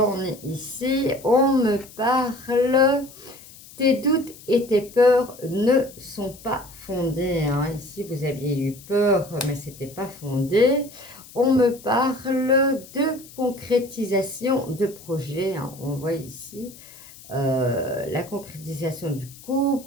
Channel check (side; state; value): left; noise; hiss, 20 dB below the sound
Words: ai ici, on me parle, tes doutes et tes peurs ne sont pas fondés. Hein. Ici vous aviez eu peur, mais c'était pas fondé. On me parle de concrétisation de projet. Hein. On voit ici la concrétisation du